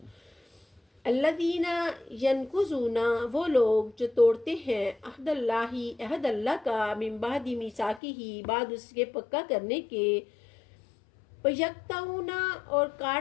الذین ینقضون وہ لوگ جو توڑتے ہیں عہد اللہ عہد اللہ کا من بعد میثاقہ بعد اس کے پکا کرنے کے. وَيَقْطَعُونَ اور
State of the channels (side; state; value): right; drops out; at 8.0 s